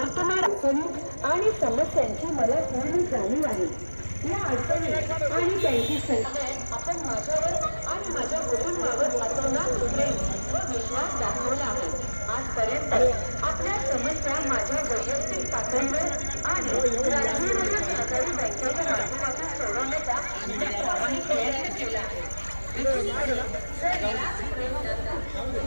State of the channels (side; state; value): both; inverted; correlation -1.00